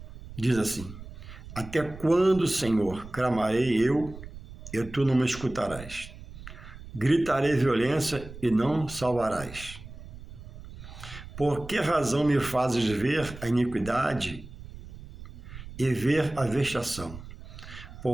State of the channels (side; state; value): right; noise; rumble, 14 dB below the sound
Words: diz assim, até quando, Senhor, clamarei eu, e tu não me escutarás? Gritarei violência e não salvarás. Por que razão me fazes ver a iniquidade e ver a vexação?